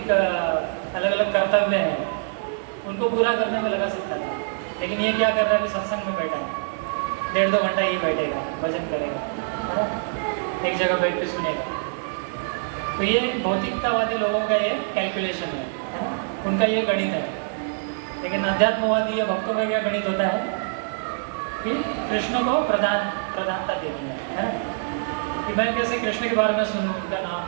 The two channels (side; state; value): left; silent; digital silence